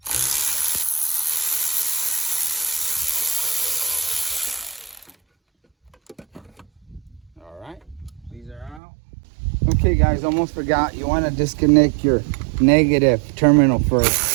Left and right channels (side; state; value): left; drops out; at 8.8 s